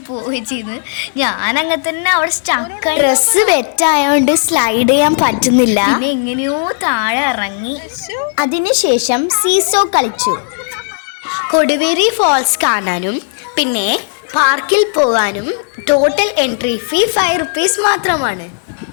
ഞാനങ്ങനെ തന്നെ അവിടെ സ്റ്റക്കായി. ഡ്രസ്സ് വെറ്റായതുകൊണ്ട് സ്ലൈഡ് ചെയ്യാൻ പറ്റുന്നില്ല. പിന്നെ എങ്ങനെയോ താഴെ ഇറങ്ങി. അതിനുശേഷം സീസോ കളിച്ചു. കൊടിവേരി ഫോൾസ് കാണാനും പിന്നെ പാർക്കിൽ പോകാനും ടോട്ടൽ എൻട്രി ഫീ 5 rupees മാത്രമാണ്.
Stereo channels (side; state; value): right; silent; digital silence